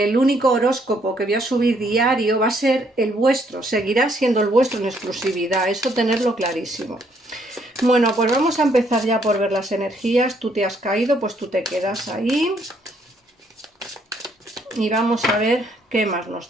único horóscopo que voy a subir diario va a ser el vuestro, seguirá siendo el vuestro en exclusividad, eso tenerlo clarísimo. Bueno, pues vamos a empezar ya por ver las energías. Tú te has caído, pues tú te quedas ahí y vamos a ver qué más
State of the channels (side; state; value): both; normal; correlation 0.69